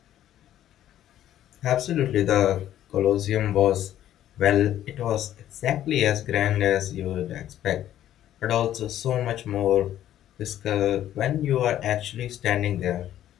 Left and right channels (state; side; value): quieter; right; 12.0 dB